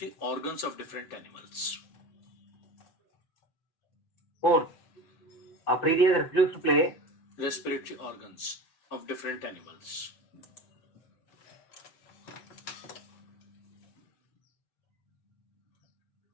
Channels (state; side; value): late; right; 7.8 ms